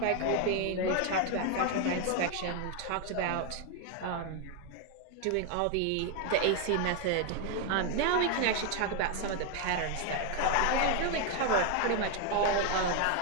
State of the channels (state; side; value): different; both; correlation 0.01